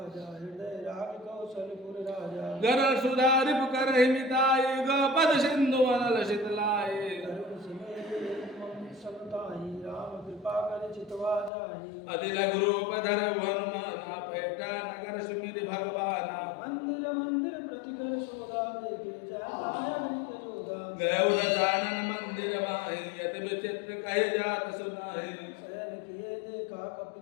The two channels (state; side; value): drops out; right; at 11.5 s